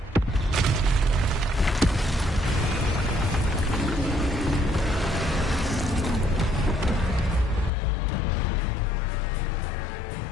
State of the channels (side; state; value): right; drops out; at 7.7 s